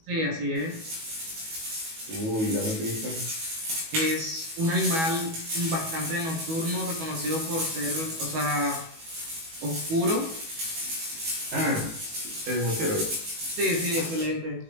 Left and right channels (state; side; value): late; left; 19 ms